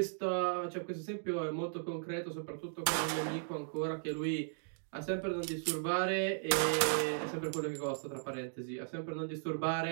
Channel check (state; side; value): silent; left; digital silence